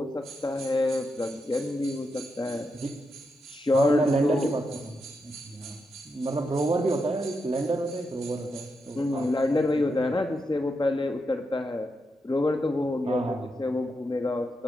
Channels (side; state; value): both; normal; correlation 0.84